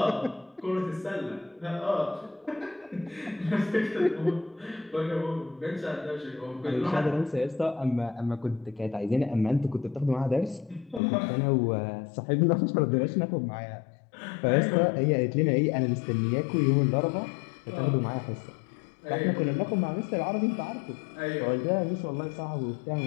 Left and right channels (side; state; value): right; drops out; at 11.0 s